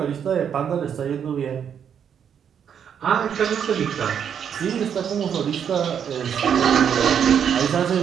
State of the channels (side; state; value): left; quieter; 8.1 dB